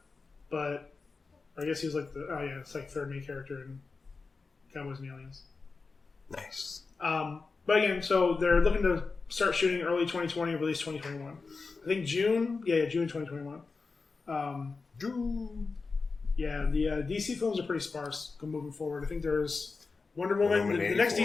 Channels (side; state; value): right; quieter; 4.3 dB